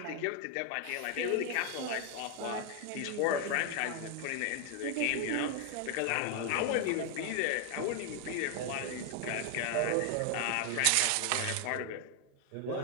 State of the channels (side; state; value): both; different; correlation 0.01